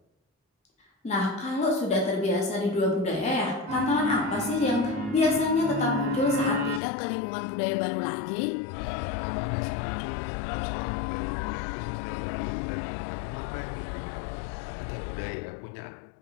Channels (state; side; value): drops out; right; at 6.8 s